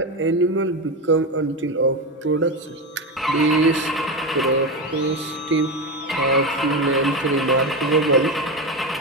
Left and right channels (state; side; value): normal; both; correlation 0.17